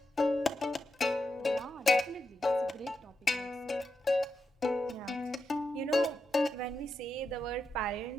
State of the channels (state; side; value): normal; both; correlation 0.86